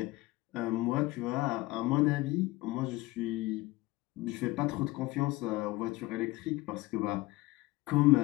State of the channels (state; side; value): quieter; right; 20.2 dB